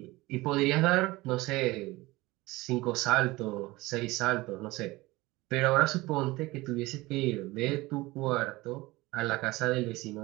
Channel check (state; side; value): quieter; left; 20.4 dB